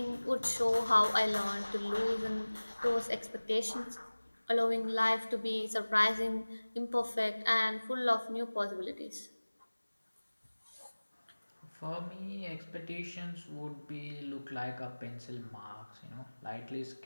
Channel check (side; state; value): both; inverted; correlation -1.00